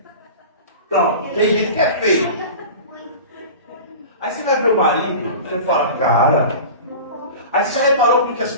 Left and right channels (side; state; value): both; inverted; correlation -0.35